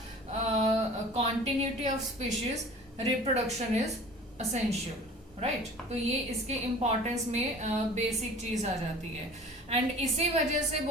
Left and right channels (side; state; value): both; normal; correlation 0.44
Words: continuity of species reproduction is essential, right तो ये इसके इम्पोर्टेंस में बेसिक चीज आ जाती है। एंड इसी वजह से